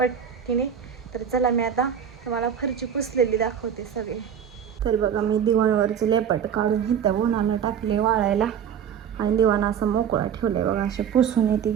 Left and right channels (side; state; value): left; quieter; 8.2 dB